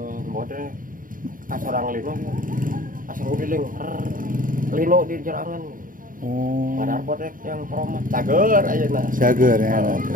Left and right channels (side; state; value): left; late; 0.40 ms